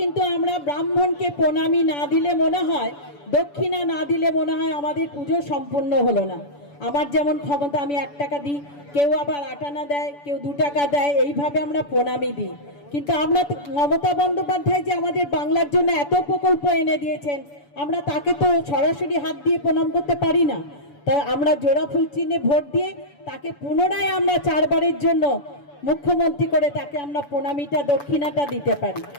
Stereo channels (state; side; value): late; right; 7.0 ms